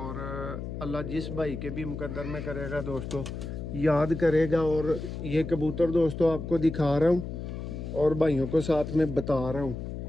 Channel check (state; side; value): noise; left; hum, 7 dB below the sound